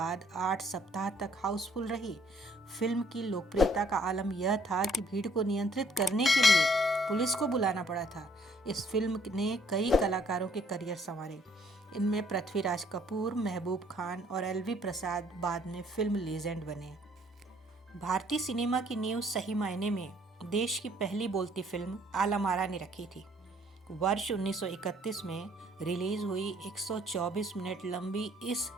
8 सप्ताह तक हाउसफुल रही। फिल्म की लोकप्रियता का आलम यह था कि भीड़ को नियंत्रित करने के लिए पुलिस को बुलाना पड़ा था। इस फिल्म ने कई कलाकारों के करियर संवारे। इनमें पृथ्वीराज कपूर, महबूब खान और एलवी प्रसाद बाद में फिल्म लीजेंड बने। भारतीय सिनेमा की नींव सही मायने में देश की पहली बोलती फिल्म आला मारा ने रखी थी। वर्ष 1931 में रिलीज हुई 124 मिनट लंबी इस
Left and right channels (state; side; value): normal; both; correlation 0.63